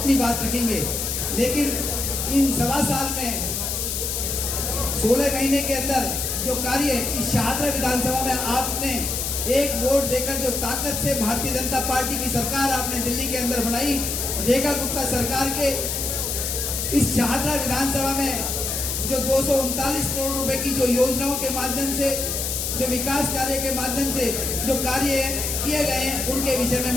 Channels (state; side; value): noise; left; hiss, 2 dB below the sound